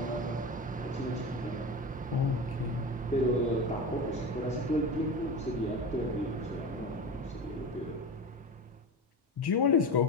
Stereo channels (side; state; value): both; normal; correlation 0.27